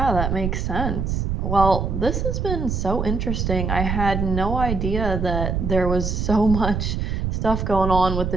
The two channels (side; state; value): right; noise; rumble, 1 dB below the sound